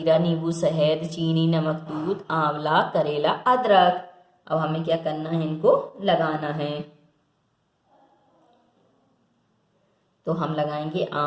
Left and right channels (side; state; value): both; identical; correlation 1.00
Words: नींबू, शहद, चीनी, नमक, दूध, आंवला, करेला, अदरक। अब हमें क्या करना है, इनको लगाना है। तो हम लगाएंगे